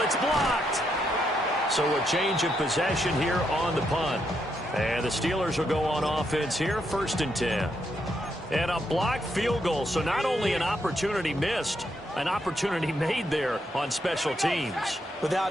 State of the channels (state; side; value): normal; both; correlation 0.79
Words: It's blocked. So a change of possession here on the punt. And the Steelers will go on offense here, 1st and 10. And a blocked field goal, so not only an opportunity missed, an opportunity made there on special teams.